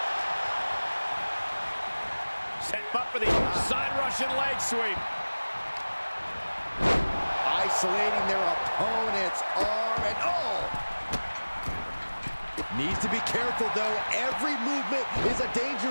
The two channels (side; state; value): both; inverted; correlation -1.00